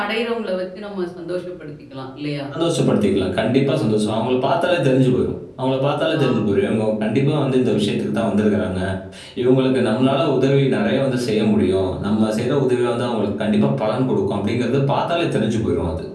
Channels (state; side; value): identical; both; correlation 1.00